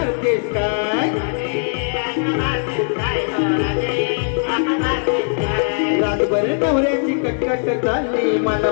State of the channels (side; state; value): right; silent; 66 dB below the other